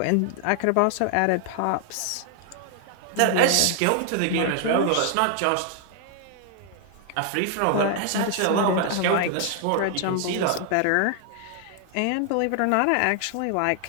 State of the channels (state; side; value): different; both; correlation 0.00